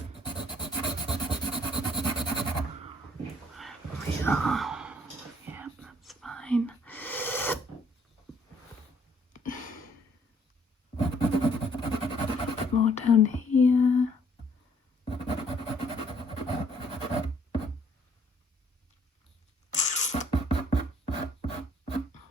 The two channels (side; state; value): both; normal; correlation 0.63